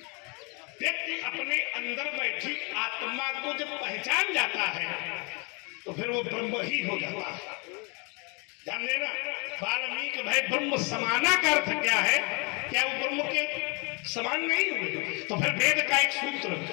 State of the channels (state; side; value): quieter; right; 31.6 dB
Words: व्यक्ति अपने अंदर बैठी आत्मा को जब पहचान जाता है तो फिर वो ब्रह्म ही हो जाता है। ध्यान देना, वाल्मीकि भाई ब्रह्म समाना का अर्थ क्या है? क्या वो ब्रह्म के समान नहीं हुए? तो फिर वेद का एक सूत्र,